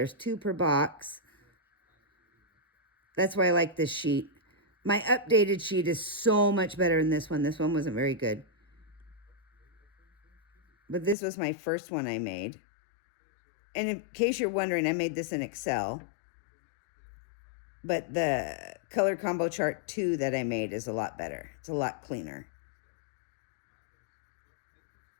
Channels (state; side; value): drops out; right; at 11.2 s